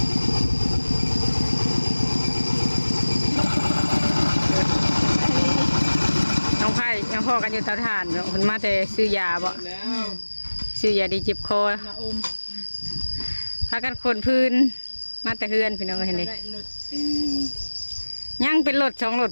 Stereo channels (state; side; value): inverted; both; correlation -1.00